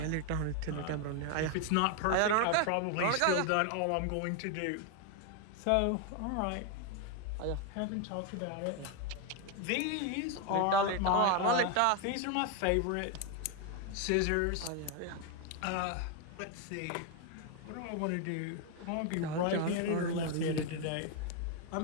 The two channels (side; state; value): both; different; correlation 0.01